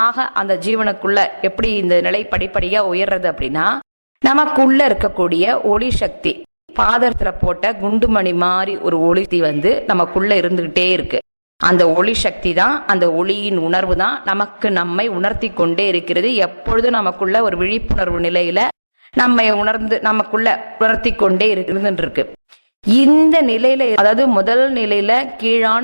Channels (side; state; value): both; inverted; correlation -1.00